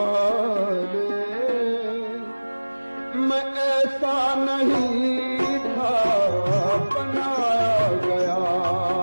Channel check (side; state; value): both; inverted; correlation -1.00